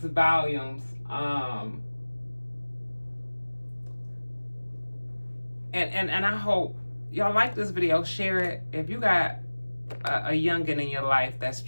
volumes. And I hope y'all like this video. Share it. If you got a youngin in your life that's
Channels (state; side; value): inverted; both; correlation -1.00